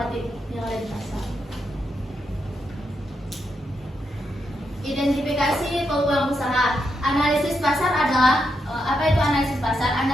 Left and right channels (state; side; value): normal; both; correlation 0.82